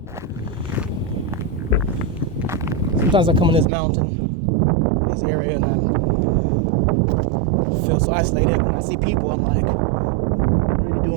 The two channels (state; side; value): drops out; left; at 3.7 s